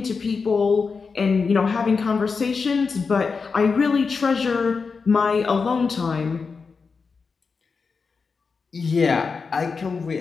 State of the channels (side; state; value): right; quieter; 5.0 dB